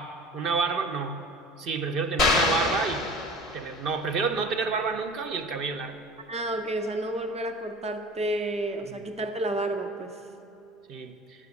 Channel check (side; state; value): both; normal; correlation 0.40